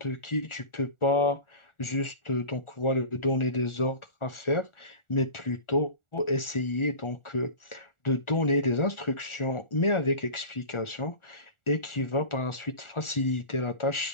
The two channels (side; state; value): right; late; 1.4 ms